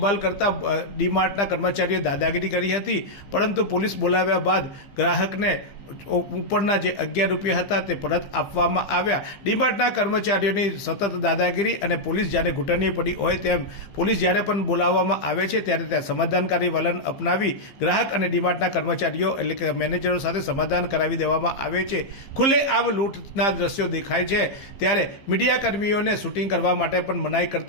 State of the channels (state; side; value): late; right; 15 ms